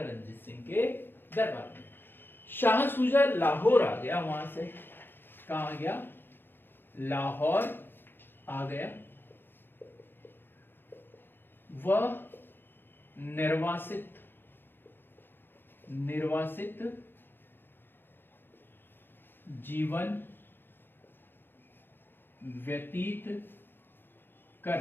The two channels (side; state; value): right; late; 0.10 ms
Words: रणजीत सिंह के दरबार में। शाह सुजा लाहौर आ गया, वहां से कहाँ आ गया? लाहौर आ गया। वह निर्वासित जीवन व्यतीत कर